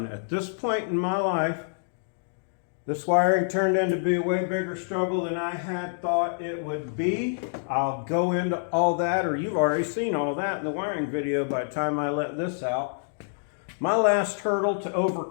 At this point in my life, this wiring turned out to be a way bigger struggle than I had thought it would be. I'll go into all that, or you've already seen all that in the wiring video by the time I let this out. My last hurdle to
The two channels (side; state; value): right; silent; digital silence